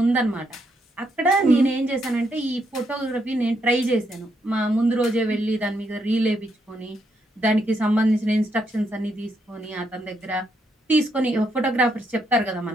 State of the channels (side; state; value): both; normal; correlation 0.77